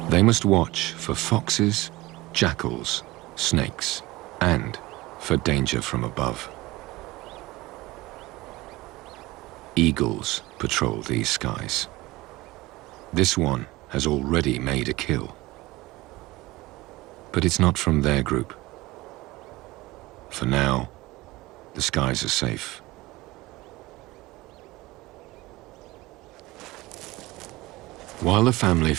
They must watch for foxes, jackals, snakes, and for danger from above. Eagles patrol these skies. This one has already made a kill. But it's not from their group. For now, the skies are safe. While the family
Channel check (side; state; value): left; quieter; 20.0 dB